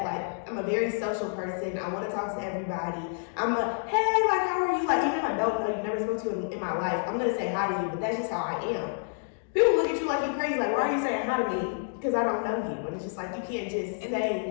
Like, I'm a very social person. I want to talk to everybody. I'm a, hey, like, how are you? Like, even if I don't know you, never spoke to you in my life, I'm going to say hi to you, but that's just how I am. People look at you like you're crazy. Like, why are you saying hi to me? Because I don't know you. And it's just like, you can't just say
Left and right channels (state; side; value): silent; right; digital silence